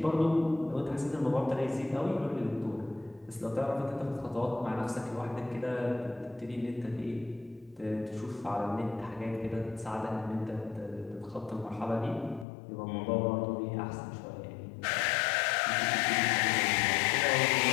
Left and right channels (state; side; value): drops out; right; at 12.5 s